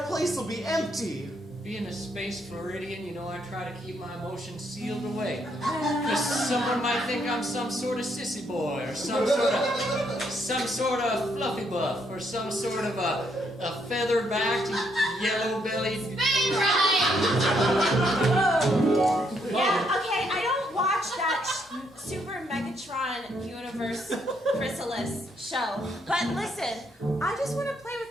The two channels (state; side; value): normal; both; correlation 0.73